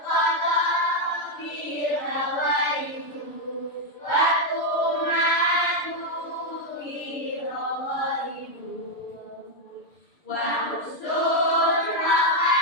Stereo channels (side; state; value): right; late; 6.9 ms